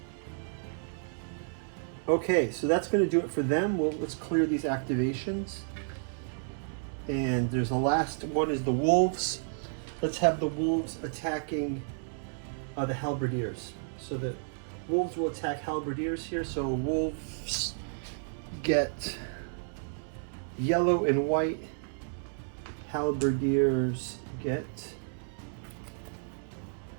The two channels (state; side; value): silent; left; 57 dB below the other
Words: Okay, so that's going to do it for them. Well, let's clear these activations. And there's the last one is the wolves. Let's have the wolves attacking the halberdiers. So the wolves will attack halberdiers here. So wolves get yellow and white. Halberdiers get